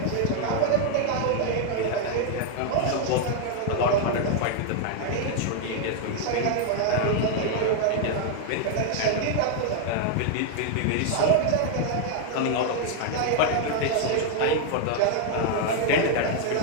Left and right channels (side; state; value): both; different; correlation 0.00